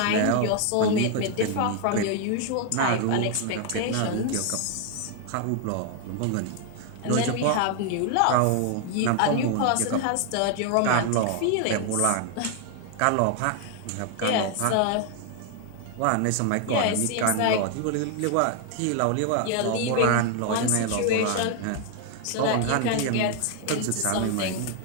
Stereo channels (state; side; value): different; both; correlation 0.00